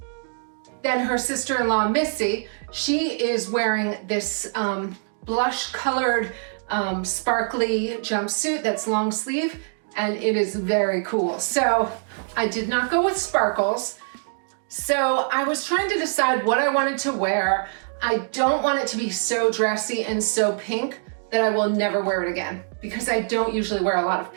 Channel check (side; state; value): left; silent; 63 dB below the other